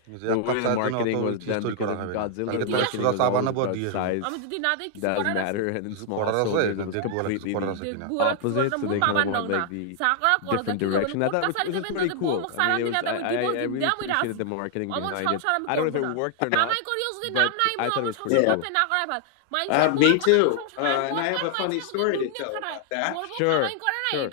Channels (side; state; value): both; different; correlation 0.00